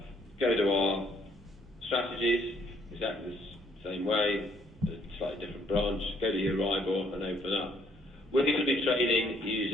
go to our strategies, exactly the same way, a slightly different branch, go to Euribor and open up. We're going to be trading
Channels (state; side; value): normal; both; correlation 0.67